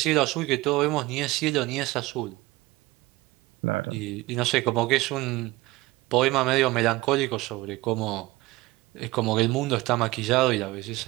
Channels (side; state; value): left; quieter; 20.0 dB